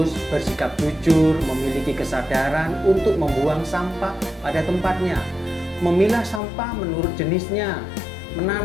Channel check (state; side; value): drops out; right; at 6.4 s